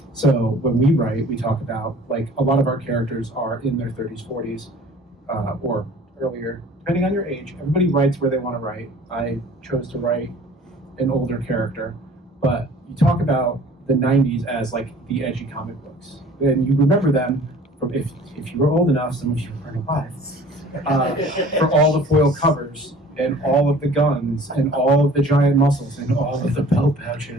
So when we write, we talk about like a lot of our characters are in their 30s, 40s, or earlier, depending on your age. Everybody writes where they want to write. I chose to write an older character, but you talk about the 90s as like the edgy comic books. And you remember them from if you were old enough, some of you weren't alive, for all the foil covers and all of the guns and all of the giant muscles and all of the belt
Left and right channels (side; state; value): both; normal; correlation 0.49